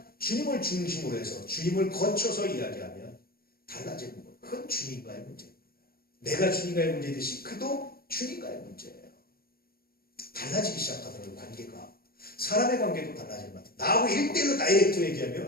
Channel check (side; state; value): right; late; 0.44 ms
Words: 주님을 중심으로 해서 주님을 거쳐서 이야기하면 달라지는 거예요. 그건 주님과의 문제입니다. 내가 주님과의 문제듯이 그도 주님과의 문제예요. 달라지기 시작하더라고요. 관계가. 사람의 관계도 달라질 것 같아요. 나하고 1대1로 다이렉트